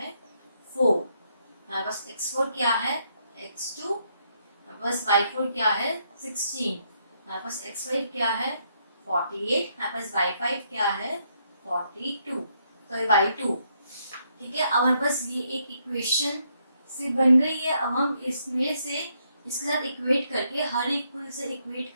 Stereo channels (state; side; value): inverted; both; correlation -0.75